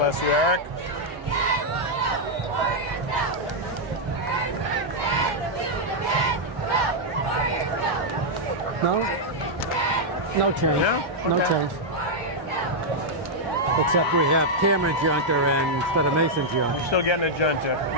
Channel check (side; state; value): both; normal; correlation -0.04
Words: you, Eric. No change. No change. Except we have Cameron Junter instead of Mason Junter. You're still getting a junta.